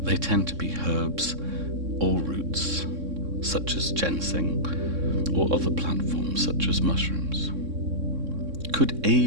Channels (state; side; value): late; left; 3.6 ms